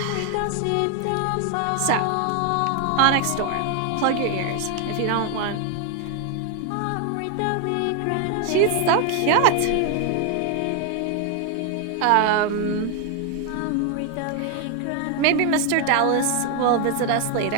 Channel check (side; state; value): both; different; correlation 0.00